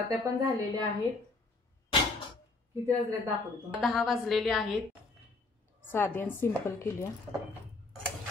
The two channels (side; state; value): right; quieter; 3.5 dB